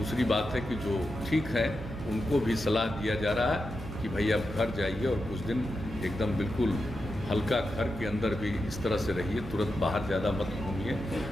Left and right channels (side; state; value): right; noise; hum, 11 dB below the sound